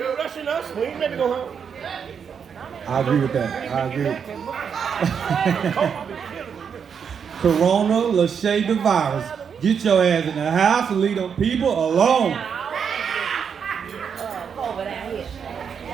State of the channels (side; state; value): left; quieter; 7.0 dB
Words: rushing us. We ain't ready to go home. I agree with that. I agree. Corona, Lachey, the virus. Get your ass in the house and leave them people alone.